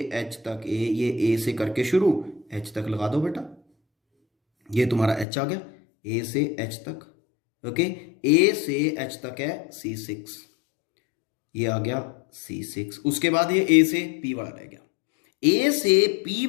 एच तक ये ए से करके शुरू, एच तक लगा दो बेटा, ये तुम्हारा एच आ गया, ए से एच तक। ओके, ए से एच तक है C6, ये आ गया C6। उसके बाद ये ए से पी वाला रह गया, ए से पी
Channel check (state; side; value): drops out; right; at 5.2 s